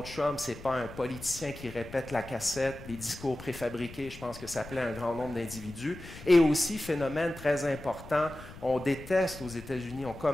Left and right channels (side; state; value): left; noise; rumble, 15 dB below the sound